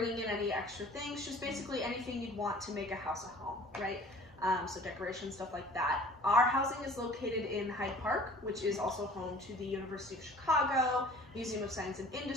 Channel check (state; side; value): normal; both; correlation 0.48